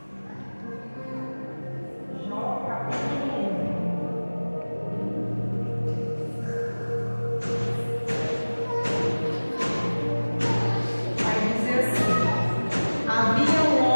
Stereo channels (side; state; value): both; inverted; correlation -1.00